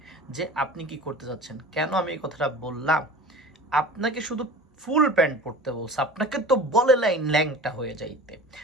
যে আপনি কি করতে যাচ্ছেন। কেন আমি এই কথাটা বললাম? আপনাকে শুধু ফুল প্যান্ট পরতে বলছে, আপনাকে তো বলে নাই ল্যাংটা হয়ে যাইতে,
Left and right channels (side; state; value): both; normal; correlation 0.39